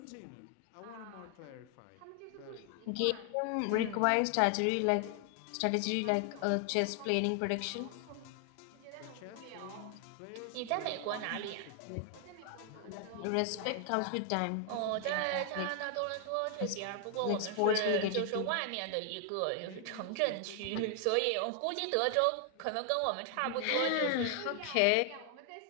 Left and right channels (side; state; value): both; different; correlation 0.00